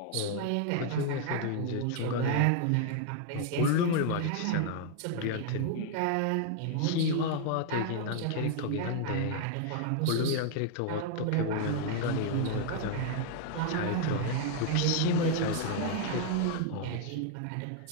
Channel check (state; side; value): different; both; correlation 0.00